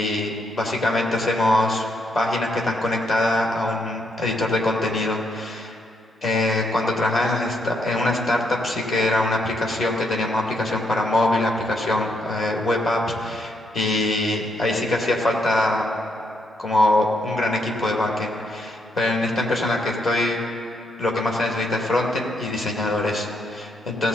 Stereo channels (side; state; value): both; normal; correlation 0.76